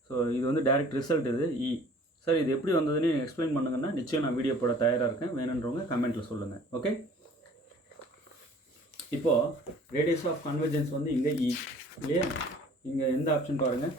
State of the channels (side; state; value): both; normal; correlation 0.51